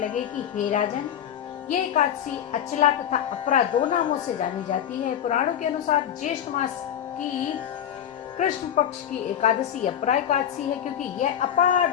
कि हे राजन, ये एकादशी अचला तथा अपरा 2 नामों से जानी जाती है। पुराणों के अनुसार ज्येष्ठ मास की कृष्ण पक्ष की एकादशी अपरा एकादशी है, क्योंकि यह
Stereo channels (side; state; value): right; quieter; 9.8 dB